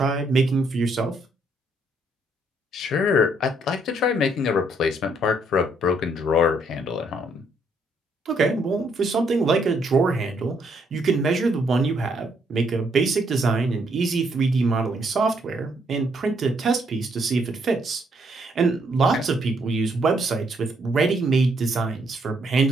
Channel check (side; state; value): both; normal; correlation 0.71